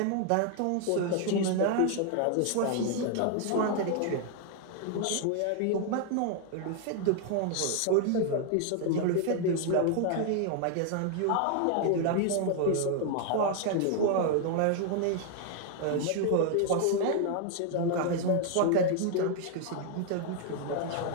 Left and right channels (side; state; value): both; different; correlation 0.00